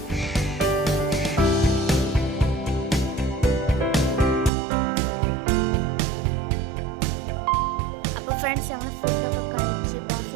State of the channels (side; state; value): left; drops out; at 4.5 s